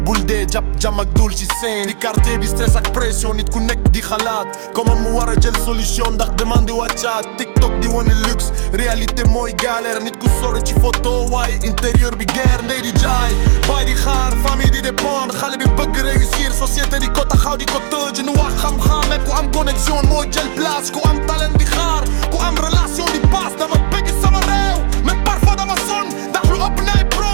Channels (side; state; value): left; silent; digital silence